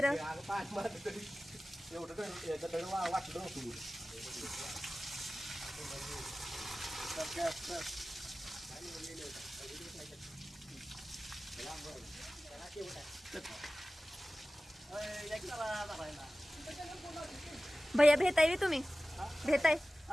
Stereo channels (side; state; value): both; normal; correlation 0.96